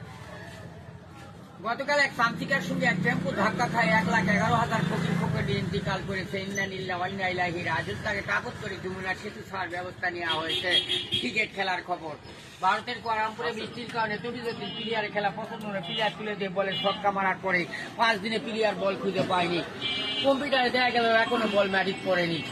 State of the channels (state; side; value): identical; both; correlation 1.00